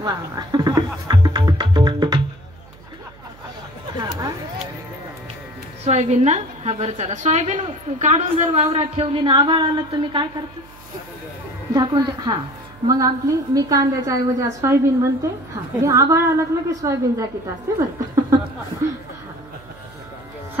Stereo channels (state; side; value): noise; right; hum, 23 dB below the sound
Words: वा सोयाबीन ना, हा बरं चला. सोयाबीन काढून जर वावरात ठेवली ना, आभाळ आलं तुम्ही काय करते? झाकून हा मग आपली मी कांद्याच्या ऐवजी आज सोयाबीन म्हणते. हा हे आभाळ आलं की सोयाबीन झाकीत असते बरं.